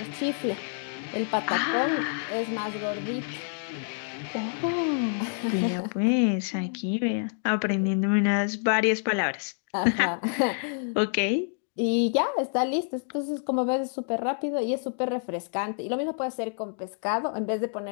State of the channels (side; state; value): right; silent; 60 dB below the other